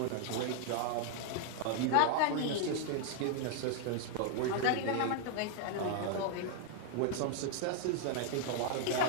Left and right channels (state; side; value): different; both; correlation 0.00